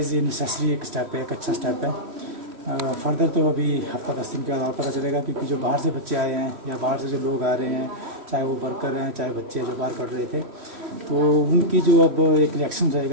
ये नेसेसरी एक स्टेप है, एक अच्छा स्टेप है। फर्दर तो अभी हफ्ता 10 दिन के बाद और पता चलेगा, क्योंकि जो बाहर से बच्चे आए हैं या बाहर से जो लोग आ रहे हैं, चाहे वो वर्कर हैं चाहे बच्चे जो बाहर पढ़ रहे थे, तो उनकी जो अब एक रिएक्शन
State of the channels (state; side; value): late; left; 3.1 ms